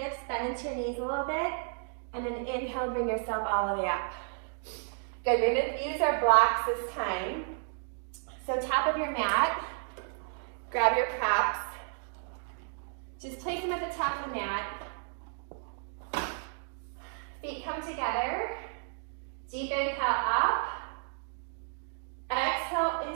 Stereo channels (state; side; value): silent; left; 56 dB below the other